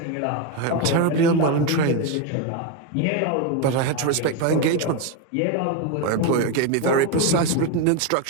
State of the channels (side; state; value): both; different; correlation 0.02